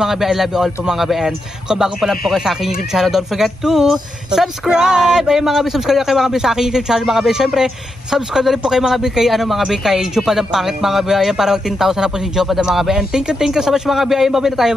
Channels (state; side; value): normal; both; correlation 0.85